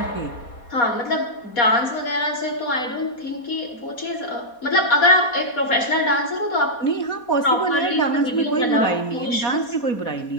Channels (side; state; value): right; late; 4.2 ms